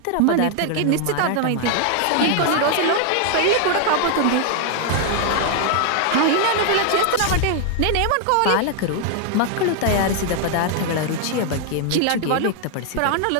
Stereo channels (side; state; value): both; different; correlation 0.00